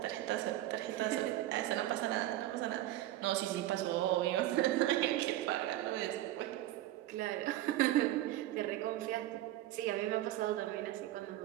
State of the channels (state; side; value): quieter; left; 14.6 dB